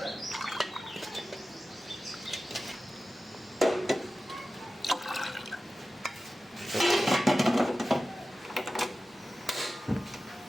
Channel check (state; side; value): normal; both; correlation 0.94